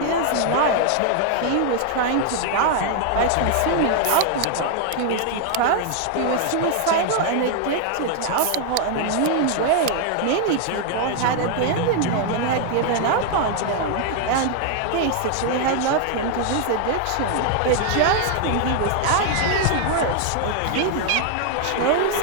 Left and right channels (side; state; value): both; different; correlation 0.00